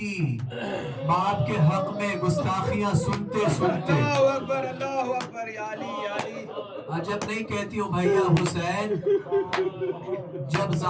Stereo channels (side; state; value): both; identical; correlation 1.00